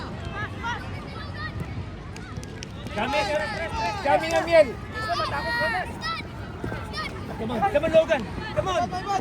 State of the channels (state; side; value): identical; both; correlation 1.00